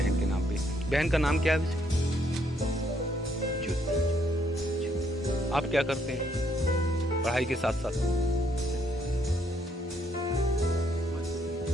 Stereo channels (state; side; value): normal; both; correlation 0.71